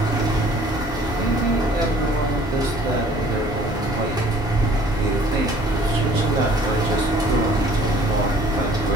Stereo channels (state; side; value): normal; both; correlation 0.54